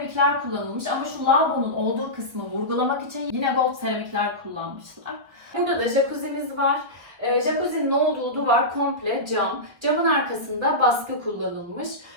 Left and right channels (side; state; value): left; late; 1.5 ms